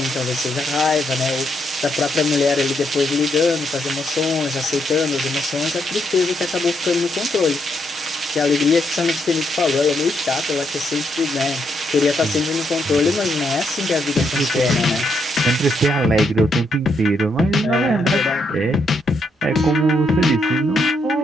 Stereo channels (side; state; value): both; normal; correlation 0.77